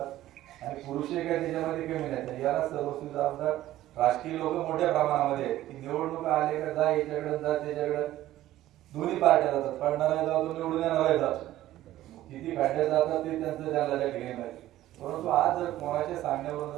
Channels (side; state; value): left; quieter; 14.4 dB